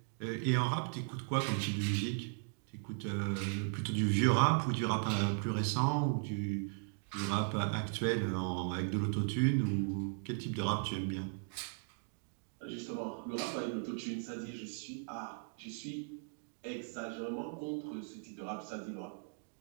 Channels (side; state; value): left; silent; 53 dB below the other